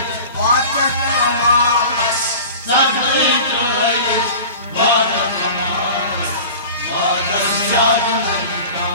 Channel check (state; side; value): inverted; both; correlation -0.39